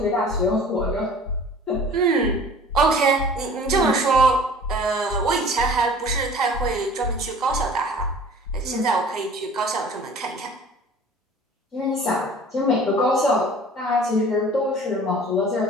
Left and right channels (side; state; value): both; normal; correlation 0.46